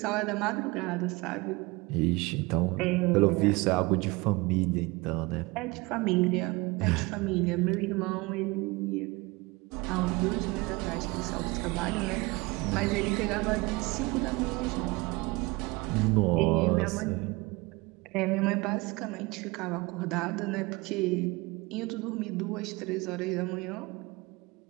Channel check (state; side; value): quieter; left; 24.2 dB